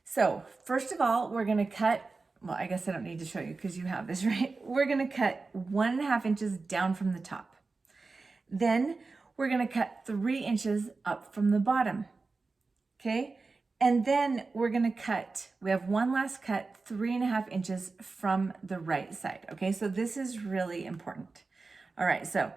So first of all, we're going to cut, well, I guess I don't need to show you because you have this, right? We're going to cut 1.5 inches down from the top. Then we're going to cut 3 inches up from the bottom. Okay. And then we're going to cut, we have one last cut, 3.5 inches from the right side. Okay. So this is really important. All right. So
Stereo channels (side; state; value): left; quieter; 3.9 dB